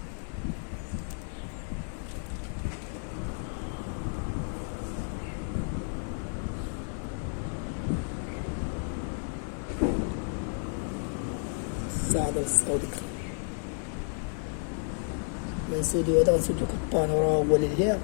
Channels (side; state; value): right; silent; 57 dB below the other